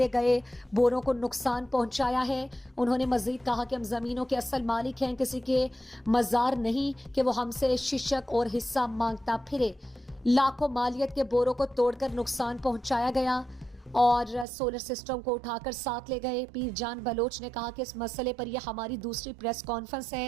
گئے بوروں کو نقصان پہنچایا ہے. انہوں نے مزید کہا کہ ہم زمینوں کے اصل مالک ہیں, کسی کے مزار نہیں کہ وہ ہم سے ششک اور حصہ مانگتا پھرے. لاکھوں مالیت کے بوروں کو توڑ کر نقصان پہنچایا گیا اور سولر سسٹم کو اٹھا کر ساتھ لے گئے. پیر جان بلوچ نے کہا کہ اس مسئلے پر یہ ہماری دوسری پریس کانفرنس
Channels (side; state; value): left; drops out; at 14.5 s